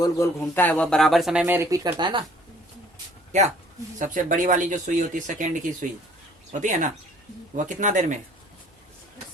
गोल घूमता है वह बराबर समय में रिपीट करता है ना। क्या सबसे बड़ी वाली जो सुई होती है, सेकेंड की सुई होती है ना, वह कितना देर में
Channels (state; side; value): normal; both; correlation 0.57